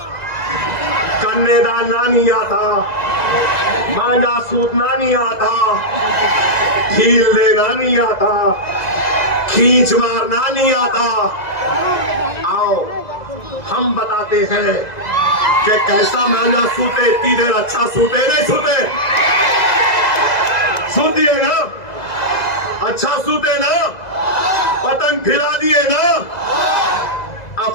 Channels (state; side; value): late; right; 2.0 ms